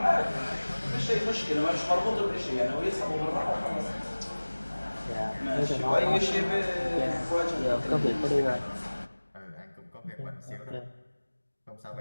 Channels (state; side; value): inverted; both; correlation -1.00